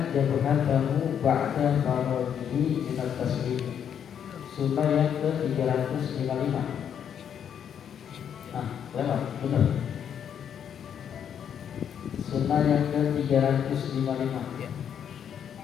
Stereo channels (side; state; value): right; quieter; 8.6 dB